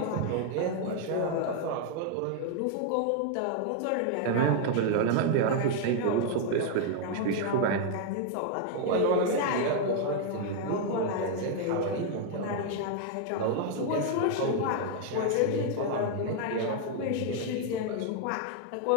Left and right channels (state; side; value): different; both; correlation 0.00